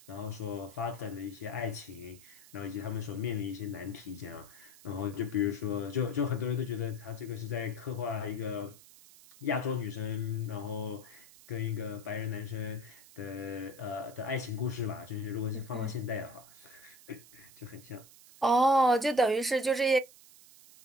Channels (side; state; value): right; noise; hiss, 21 dB below the sound